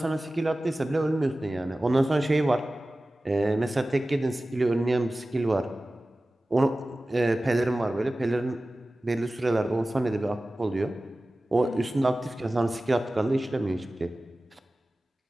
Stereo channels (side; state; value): both; normal; correlation 0.96